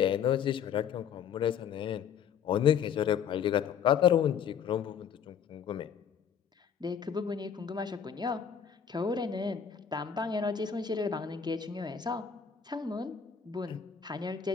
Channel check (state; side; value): quieter; right; 7.8 dB